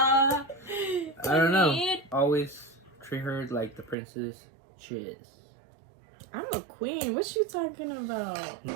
I don't know. Always treat her like the princess she is. I'm a queen. What you talking about?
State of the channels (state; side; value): drops out; left; at 4.0 s